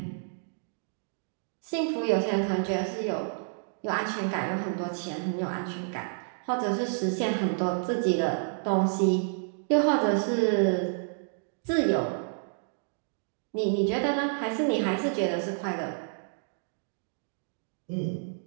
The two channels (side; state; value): left; silent; digital silence